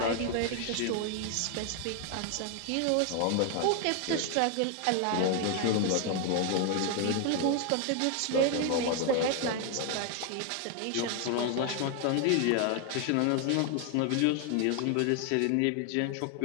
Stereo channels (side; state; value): both; different; correlation 0.01